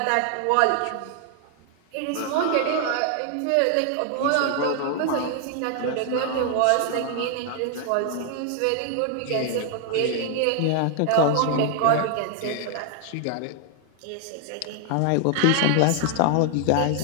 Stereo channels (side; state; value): both; different; correlation 0.00